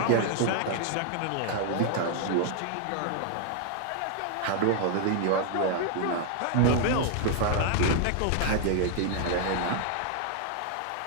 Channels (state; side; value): different; both; correlation 0.00